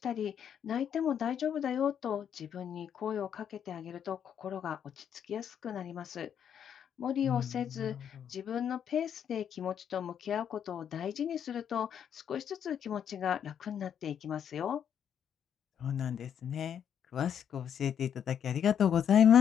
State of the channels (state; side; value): quieter; right; 8.6 dB